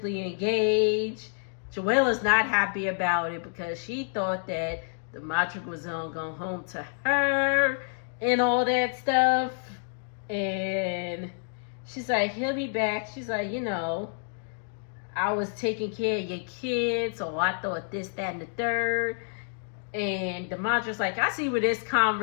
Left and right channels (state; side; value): silent; right; digital silence